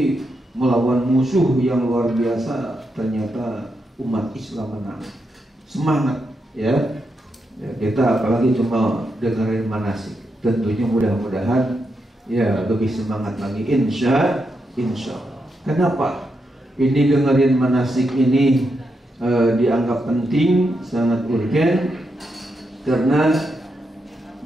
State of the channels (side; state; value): both; normal; correlation 0.84